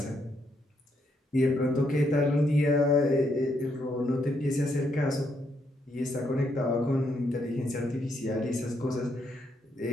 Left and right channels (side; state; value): both; normal; correlation 0.76